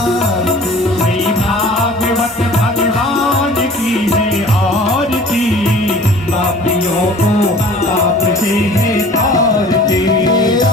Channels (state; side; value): normal; both; correlation 0.46